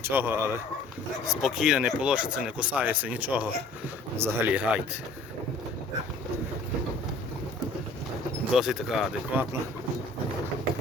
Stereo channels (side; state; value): right; quieter; 3.0 dB